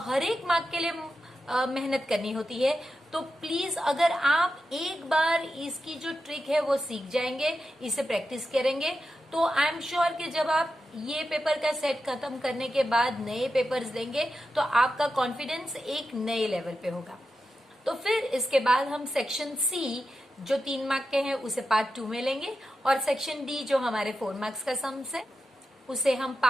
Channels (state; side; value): normal; both; correlation 0.90